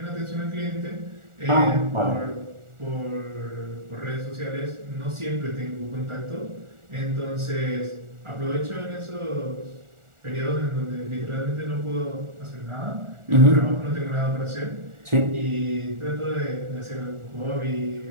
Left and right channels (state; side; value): late; left; 1.4 ms